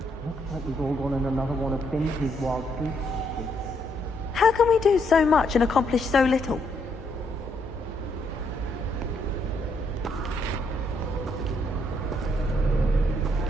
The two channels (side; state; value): both; normal; correlation 0.74